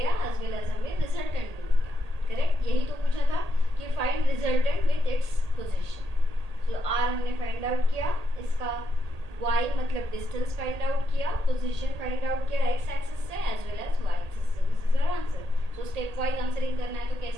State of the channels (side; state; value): left; late; 1.8 ms